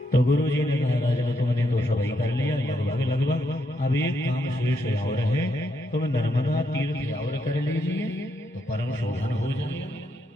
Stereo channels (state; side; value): normal; both; correlation 0.78